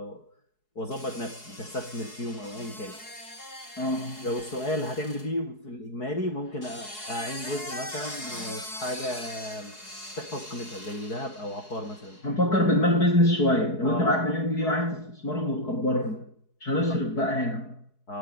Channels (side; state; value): right; late; 4.7 ms